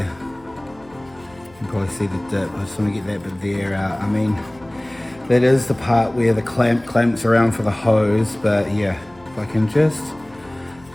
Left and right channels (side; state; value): left; noise; hum, 26 dB below the sound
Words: can probably see the dip. I just want to get that bit there out. I mean, that is the part where the clamps around for the hose, but yeah, if I can just